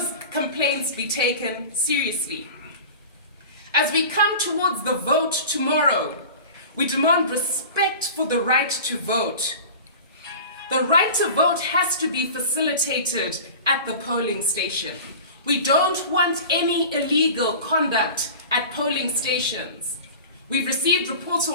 complaints be taken seriously. As we come towards the vote tomorrow, we demand respect for the right to vote. The right to vote has to be facilitated at the polling station. We don't want any illegal conduct at polling stations. We've received reports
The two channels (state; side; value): inverted; both; correlation -0.36